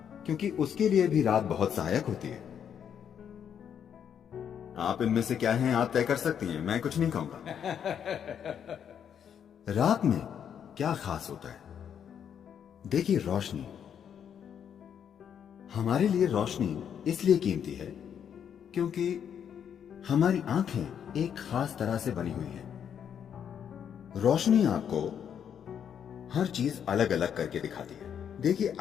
क्योंकि उसके लिए भी रात बहुत सहायक होती है। आप इनमें से क्या हैं आप तय कर सकती हैं, मैं कुछ नहीं कहूंगा। रात में क्या खास होता है? देखिए, रोशनी। हमारे लिए रोशनी इसलिए कीमती है क्योंकि हमारी आंखें एक खास तरह से बनी हुई हैं। रोशनी आपको हर चीज अलग अलग करके दिखाती है। देखिए,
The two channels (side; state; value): right; quieter; 8.4 dB